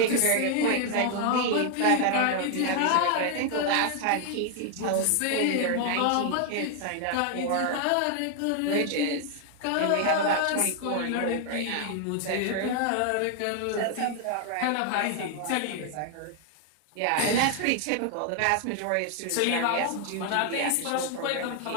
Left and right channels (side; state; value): both; different; correlation 0.00